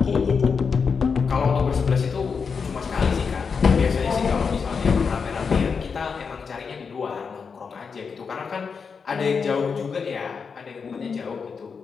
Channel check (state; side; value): quieter; right; 5.6 dB